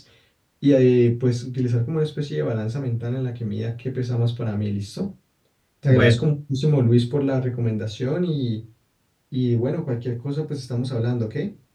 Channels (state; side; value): identical; both; correlation 1.00